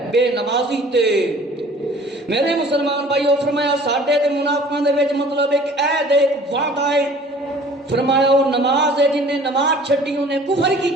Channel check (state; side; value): normal; both; correlation 0.49